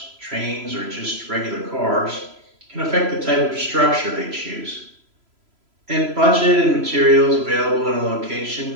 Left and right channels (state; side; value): late; left; 3.0 ms